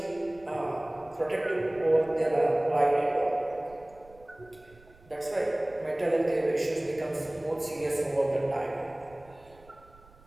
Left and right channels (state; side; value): noise; right; rumble, 26 dB below the sound